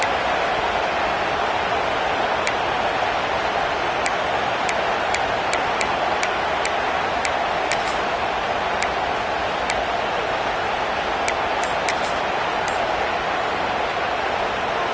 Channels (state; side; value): identical; both; correlation 1.00